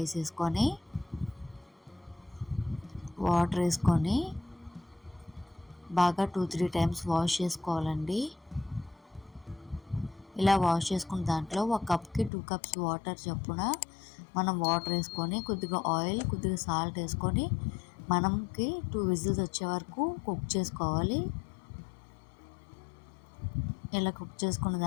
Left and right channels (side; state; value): right; drops out; at 12.3 s